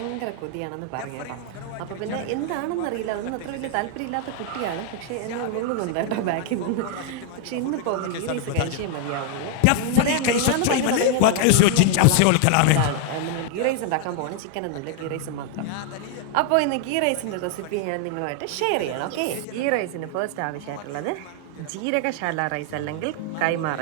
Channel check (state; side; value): different; both; correlation 0.00